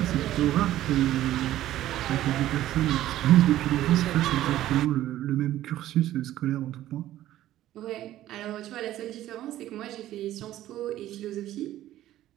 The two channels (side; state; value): left; quieter; 13.7 dB